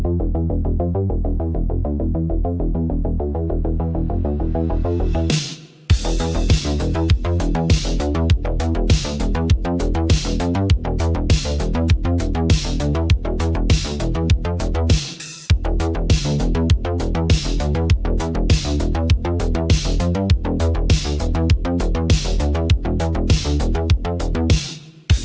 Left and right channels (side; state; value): both; identical; correlation 1.00